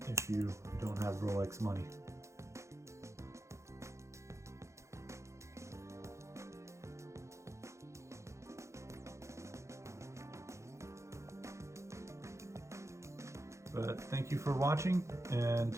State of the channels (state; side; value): late; left; 0.14 ms